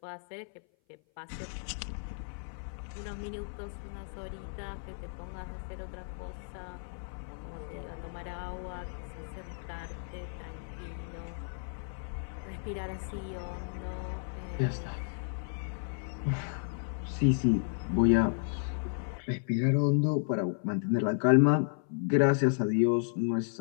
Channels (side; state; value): right; silent; 56 dB below the other